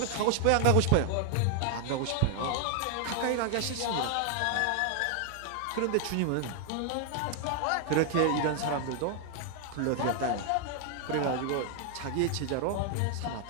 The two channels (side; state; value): both; different; correlation 0.00